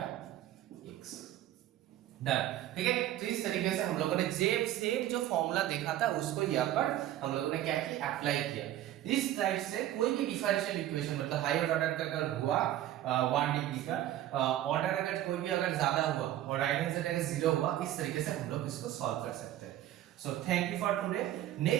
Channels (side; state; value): left; quieter; 13.0 dB